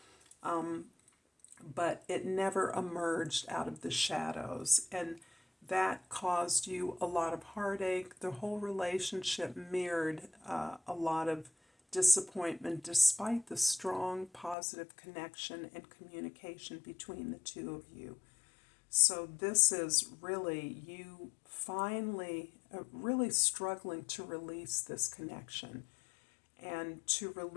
But it never emerged out of the shadows, and that caused you a lot of heartache. The whole relationship mirrored a lot of disappointment despite the strong positive connection and communication between the two of you. So this is really you finally really struggling to release this connection and to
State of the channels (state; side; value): drops out; right; at 14.6 s